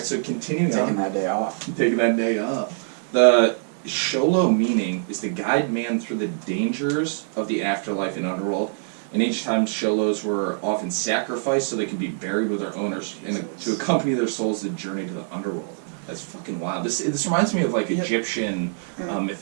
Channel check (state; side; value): silent; left; digital silence